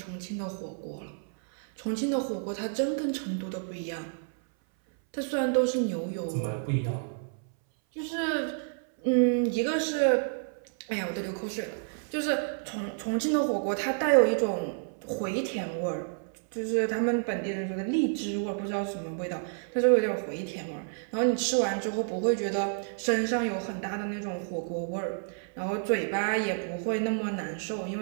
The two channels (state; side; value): silent; left; 58 dB below the other